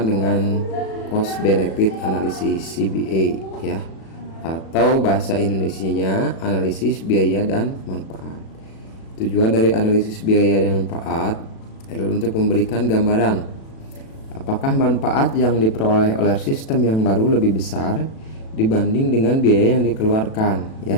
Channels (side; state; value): right; late; 36 ms